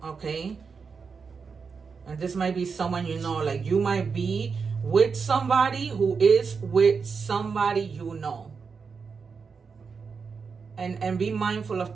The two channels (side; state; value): left; quieter; 5.4 dB